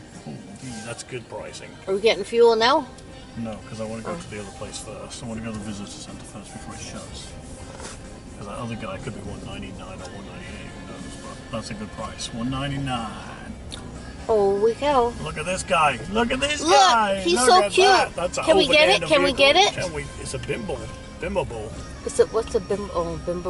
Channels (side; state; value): both; identical; correlation 1.00